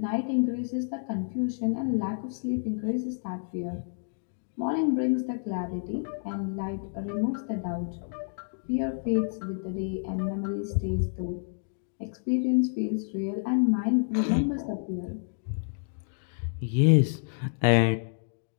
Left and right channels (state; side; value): silent; right; digital silence